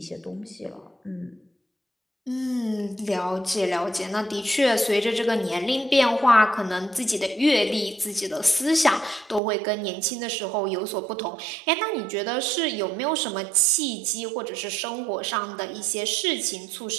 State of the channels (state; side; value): drops out; left; at 9.4 s